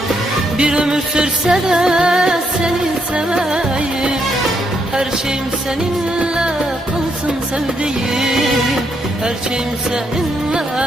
Bir ömür sürse de seni seveyim, her şeyim seninle kalsın sevdiğim. Her şeyim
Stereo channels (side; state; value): both; normal; correlation 0.77